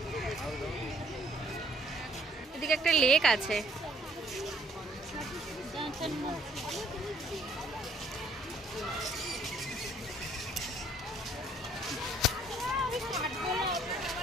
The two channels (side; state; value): both; normal; correlation 0.63